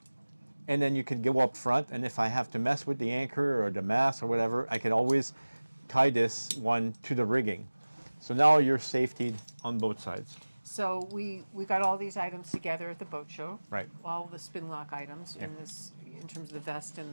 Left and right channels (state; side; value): inverted; both; correlation -1.00